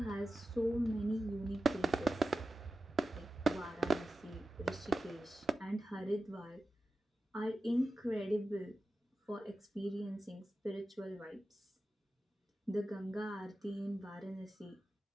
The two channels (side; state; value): both; normal; correlation 0.93